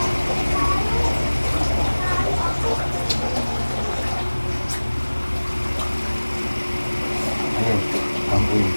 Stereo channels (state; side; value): inverted; both; correlation -1.00